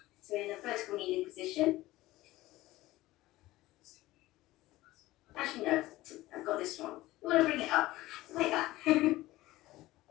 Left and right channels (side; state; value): right; quieter; 17.5 dB